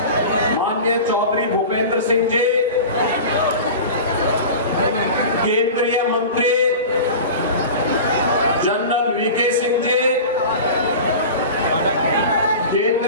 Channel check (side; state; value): both; inverted; correlation -0.33